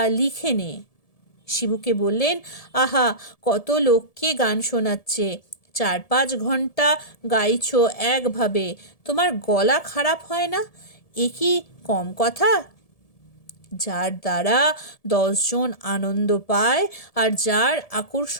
লিখে নে। শিবুকে বললেন, আহা, কত লোককে গান শোনাচ্ছে, 4-5 ঘন্টা গাইছো একভাবে, তোমার গলা খারাপ হয় না? এ কি কম কথা? যার দ্বারা 10 জন আনন্দ পায় আর যার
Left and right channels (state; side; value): late; right; 1.7 ms